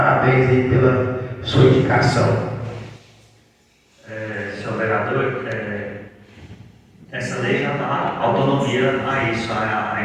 aí pela sua indicação. Senhor vereador, essa lei já dá autonomia a isso,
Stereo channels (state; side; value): identical; both; correlation 1.00